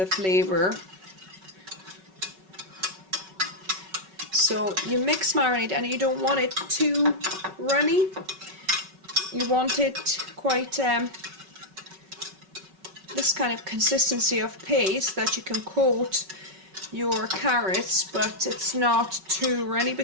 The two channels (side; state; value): left; late; 5.3 ms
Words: flavour. So you mix marinade, and you don't want it too runny. You want it quite this kind of consistency of paste that you can coat your carrots, but it's not too runny,